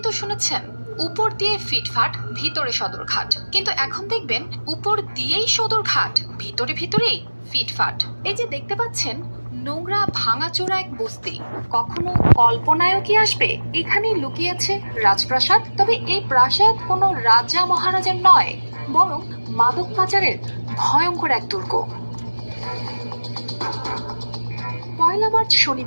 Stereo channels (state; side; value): inverted; both; correlation -1.00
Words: তো শুনেছেন উপর দিয়ে ফিটফাট ভিতরে সদরঘাট, কিন্তু এখন দেখবেন উপর দিয়েই সদরঘাট, ভিতরে ভিতরেই ফিটফাট। এই যে দেখতে পাচ্ছেন নোংরা ভাঙাচোরা এক বস্তি, কখনো কল্পনায়ও কি আসবে এখানে লুকিয়েছে রাজপ্রাসাদ? তবে এই প্রাসাদ কোনো রাজা মহারাজার নয়, বরং মাদক পাচারের ভয়ঙ্কর এক দুর্গ। পয়লা মার্চ